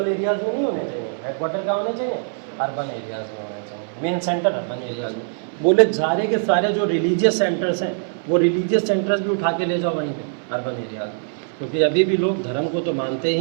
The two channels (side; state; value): left; silent; 59 dB below the other